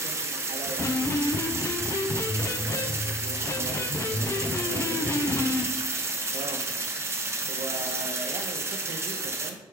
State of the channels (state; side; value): normal; both; correlation 0.38